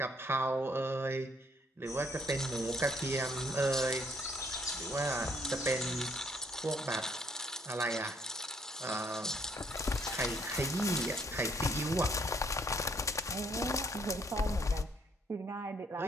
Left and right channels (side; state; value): both; normal; correlation 0.66